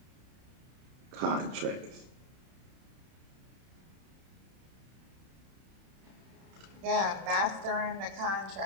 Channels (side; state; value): left; late; 31 ms